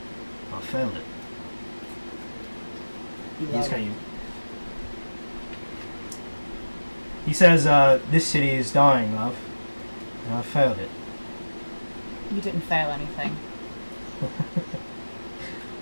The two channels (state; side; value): inverted; both; correlation -1.00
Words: I failed it. He says, this city is dying, love. And I failed it. You didn't fail anything.